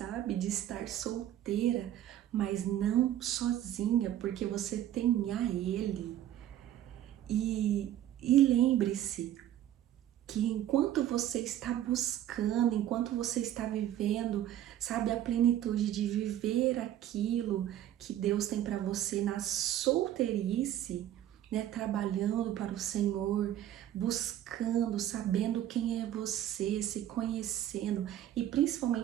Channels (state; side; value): quieter; left; 11.9 dB